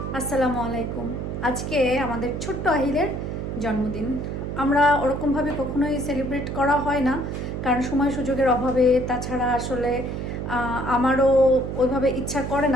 আসসালামু আলাইকুম। আজকে আমাদের ছোট্ট আহিলের জন্মদিন। আমরা ওরকমভাবে কখনোই সেলিব্রেট করা হয় না, কারণ সময় সুযোগের অভাবে। তাছাড়া আসলে আমারও ওইভাবে ইচ্ছা করে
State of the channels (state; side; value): noise; right; hum, 5 dB below the sound